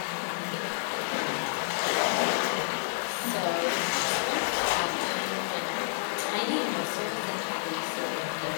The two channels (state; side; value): silent; right; 56 dB below the other